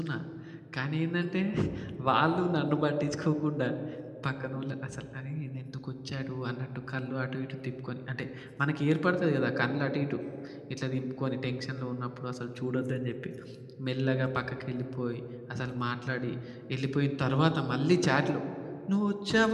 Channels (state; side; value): identical; both; correlation 1.00